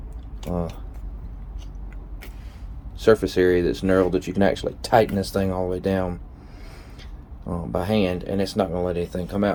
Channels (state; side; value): identical; both; correlation 1.00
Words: surface area that's knurled that you can actually tighten this thing all the way down by hand, and it's not going to let anything come